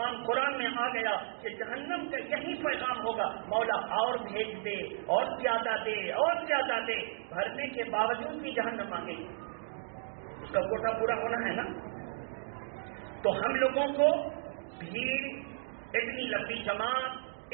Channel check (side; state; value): left; silent; digital silence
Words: قرآن میں آ گیا کہ جہنم کا یہی پیغام ہوگا مولا اور بھیج دے، اور زیادہ دے، اور زیادہ دے. بھرنے کے باوجود بھی جہنم مانگے گی، اس کا کوٹا پورا ہونا ہے نا. تو ہم لوگوں کو بھیڑ، اتنی لمبی جماعت،